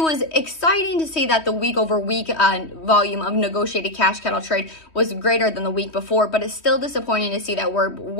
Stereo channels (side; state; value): right; late; 3.1 ms